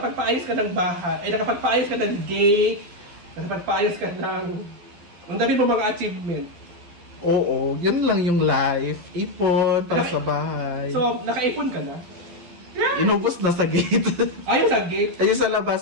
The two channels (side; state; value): left; late; 11 ms